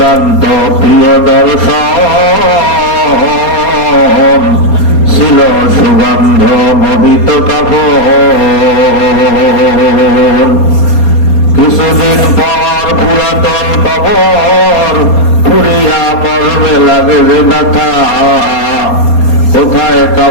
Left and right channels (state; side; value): late; right; 4.3 ms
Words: প্রিয় দর্শন ছিল সুগন্ধ মোহিত কাপড়। কিছুদিন পর পুরাতন কবর ফুরিয়া মর্মে লাগে যে ব্যথা, কোথায়